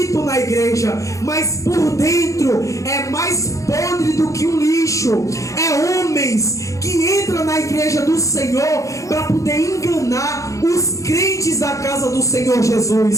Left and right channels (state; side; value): late; right; 0.15 ms